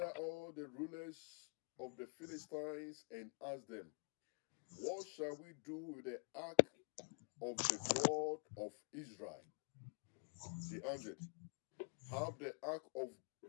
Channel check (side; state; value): right; quieter; 39.8 dB